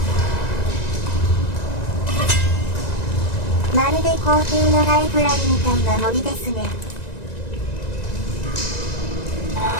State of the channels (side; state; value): right; late; 1.9 ms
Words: まるで皇帝のライブラリみたいな森ですね。